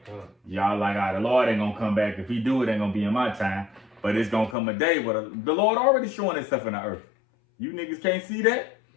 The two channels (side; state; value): right; drops out; at 4.5 s